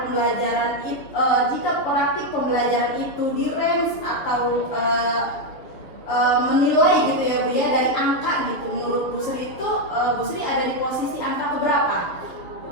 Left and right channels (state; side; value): late; right; 6.6 ms